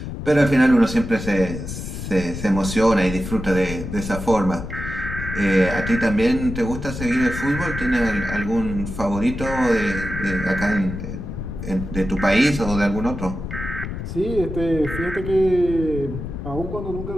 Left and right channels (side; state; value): left; noise; rumble, 7 dB below the sound